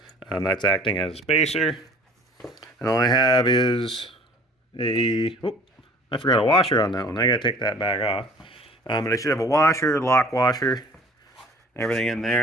That's acting as a spacer. And all I have is a, oh, I forgot a washer on that one. I gotta take that back off. But I should have a washer, lock washer, everything in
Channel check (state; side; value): normal; both; correlation 0.50